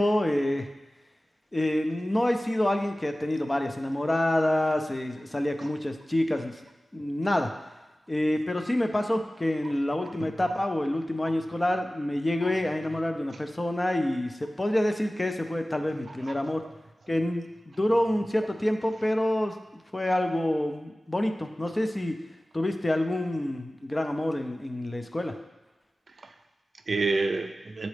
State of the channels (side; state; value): both; normal; correlation 0.97